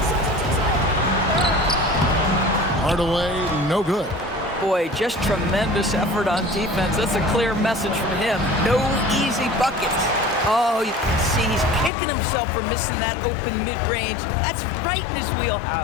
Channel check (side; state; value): right; drops out; at 11.9 s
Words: Hardaway, no good. Boy, just tremendous effort on defense. That's a clear message from him. No easy buckets. Oh, you can see he's kicking himself for missing that open mid-range. That's right in his